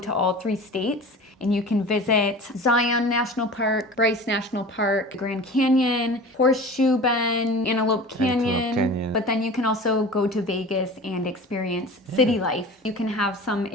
all three states and you can visit Zion National Park, Bryce National Park, Grand Canyon, Horseshoe Bend, Antelope Canyon. But then you can also go to Vegas and experience city life. You can have some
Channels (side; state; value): both; normal; correlation 0.37